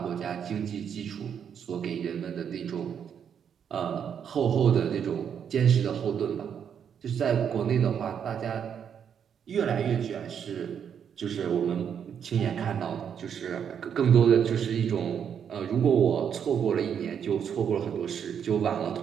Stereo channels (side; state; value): left; quieter; 8.0 dB